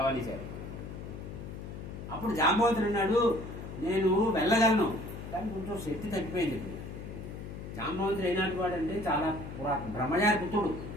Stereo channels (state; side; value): noise; left; hum, 9 dB below the sound